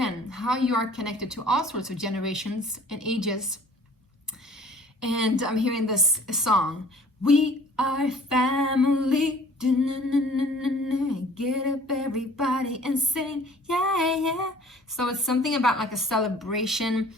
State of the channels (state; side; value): normal; both; correlation 0.51